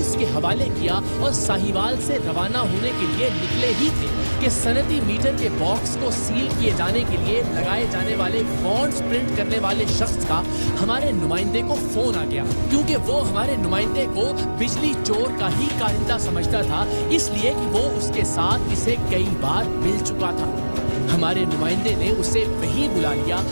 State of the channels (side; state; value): both; inverted; correlation -1.00